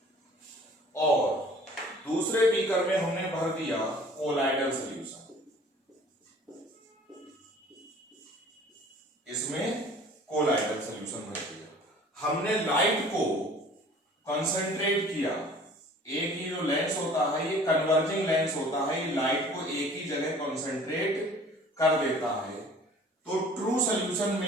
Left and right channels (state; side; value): normal; both; correlation 0.49